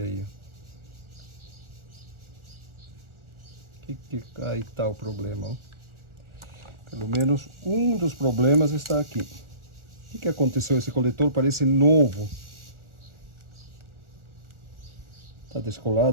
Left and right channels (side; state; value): left; late; 1.4 ms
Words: aí. Aí está o problema, ó. Pelo menos um dos problemas está aqui. O que aconteceu? Esse coletor parece novo. Está